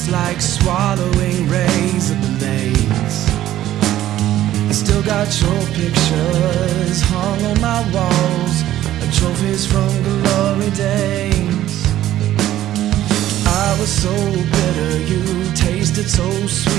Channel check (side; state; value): left; quieter; 13.2 dB